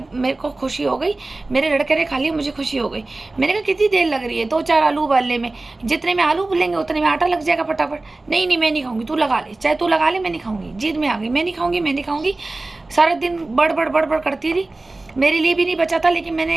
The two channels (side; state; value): left; quieter; 3.1 dB